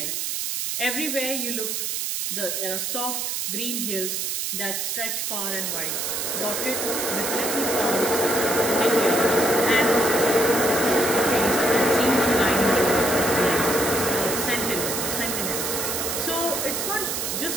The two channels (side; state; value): right; noise; hiss, 2 dB below the sound